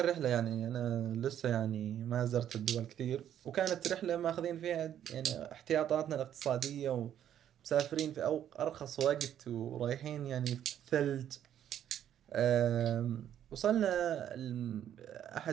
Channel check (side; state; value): left; quieter; 10.4 dB